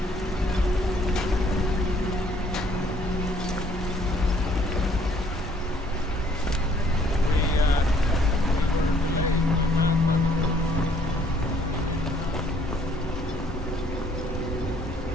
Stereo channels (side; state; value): both; normal; correlation 0.62